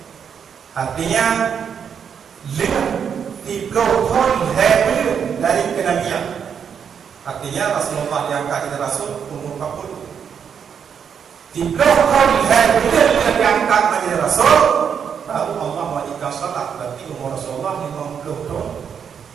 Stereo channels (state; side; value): quieter; left; 7.4 dB